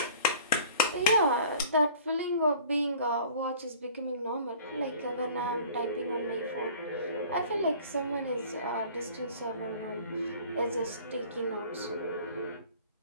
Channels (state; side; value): inverted; both; correlation -0.48